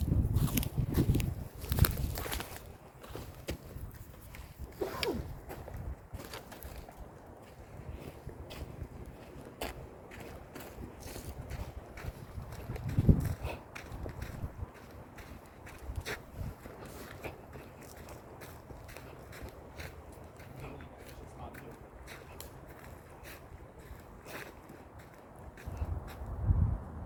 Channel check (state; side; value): identical; both; correlation 1.00